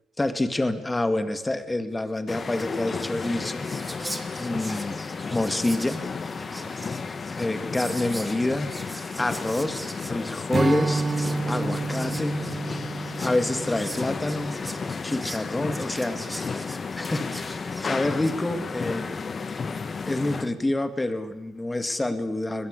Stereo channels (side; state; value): both; normal; correlation 0.95